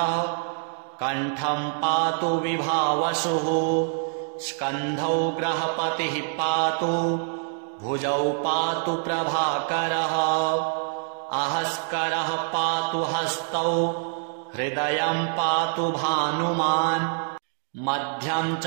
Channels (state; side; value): silent; left; 61 dB below the other